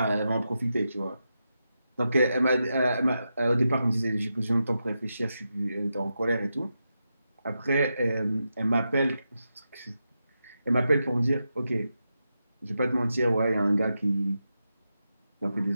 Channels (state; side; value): inverted; both; correlation -0.88